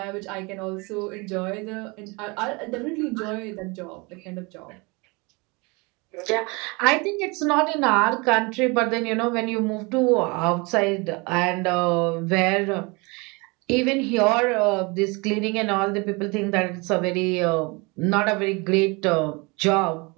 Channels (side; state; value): left; quieter; 27.7 dB